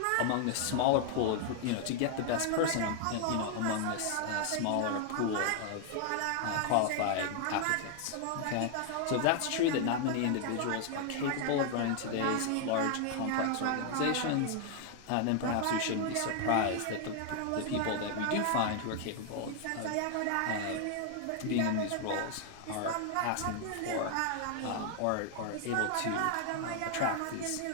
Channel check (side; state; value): both; different; correlation 0.00